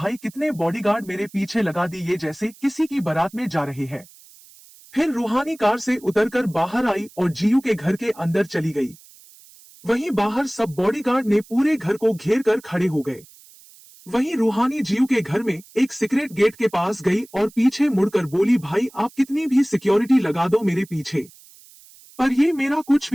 कितने बॉडीगार्ड मेरे पीछे लगा दी, ये जैसे किसी की बारात में जा रहे हैं। फिर रूहानी कार से उतरकर बाहर आई और जियू के घर के अंदर चली गई। वहीं बाहर सब बॉडीगार्ड ने पूरे घर को घेर कर खड़े हो गए। वहीं रूहानी जियू के घर में एक सीक्रेट गेट के पास गई और पीछे मुड़कर बोली, भाई आप कितनी भी सिक्योरिटी लगा दो मेरे पीछे, पर ये मेरा कुछ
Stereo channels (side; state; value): right; noise; hiss, 24 dB below the sound